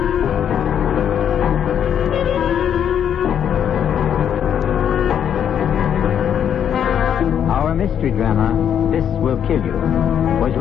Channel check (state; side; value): quieter; right; 8.9 dB